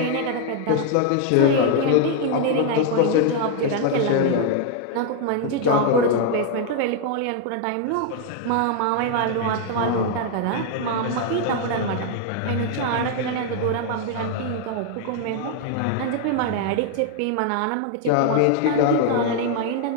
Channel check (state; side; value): different; both; correlation 0.00